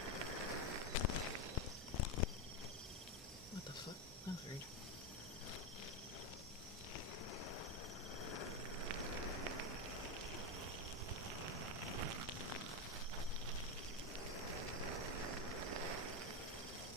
What the fuck? That's weird.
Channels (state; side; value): normal; both; correlation 0.09